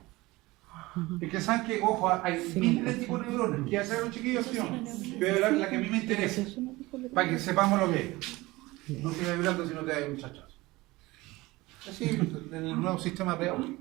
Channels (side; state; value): left; quieter; 20.6 dB